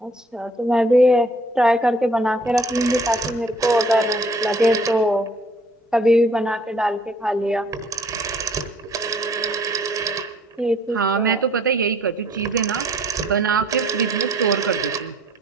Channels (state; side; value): normal; both; correlation 0.59